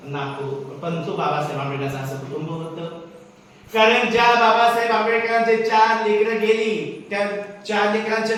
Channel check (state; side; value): identical; both; correlation 1.00